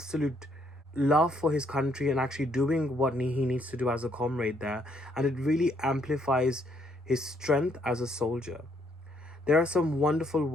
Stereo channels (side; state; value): both; normal; correlation 0.70